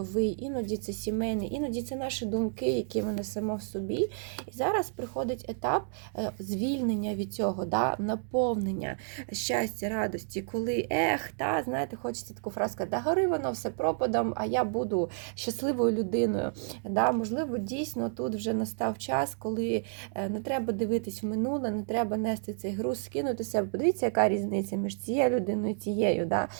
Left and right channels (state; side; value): silent; left; 57 dB below the other